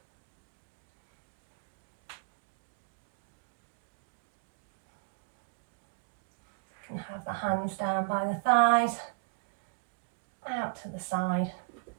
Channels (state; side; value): quieter; left; 32.2 dB